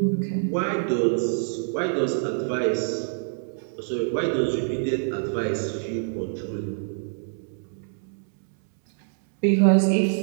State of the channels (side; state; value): left; silent; 61 dB below the other